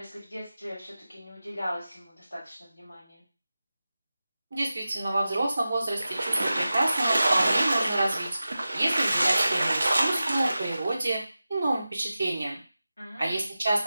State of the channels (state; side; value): inverted; both; correlation -0.94